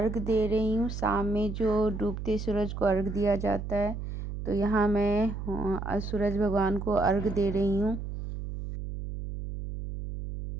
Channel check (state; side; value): noise; right; hum, 6 dB below the sound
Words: दे रही हूँ। शाम में जो डूबते सूरज को अर्घ दिया जाता है, तो यहाँ मैं सूरज भगवान को अर्घ दे रही हूँ।